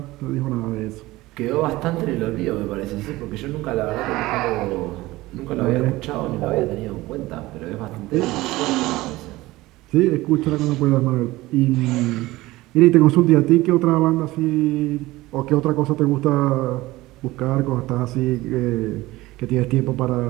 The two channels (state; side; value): quieter; left; 18.8 dB